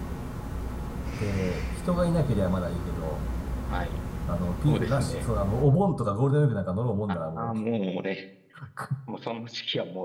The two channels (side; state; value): both; identical; correlation 1.00